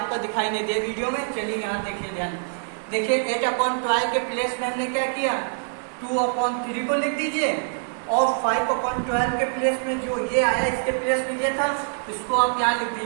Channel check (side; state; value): left; silent; digital silence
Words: दिखाई नहीं दे वीडियो में। चलिए यहाँ देखिए, ध्यान देखिए, 8/12 के प्लेस में हमने क्या किया, 2/3 को लिख दीजिए और 5/12 के प्लेस में जो ये आया इसके प्लेस में ये था, इसको आप यहाँ लिख